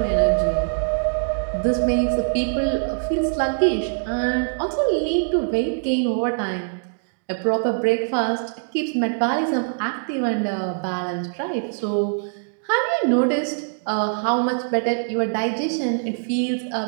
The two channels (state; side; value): silent; left; digital silence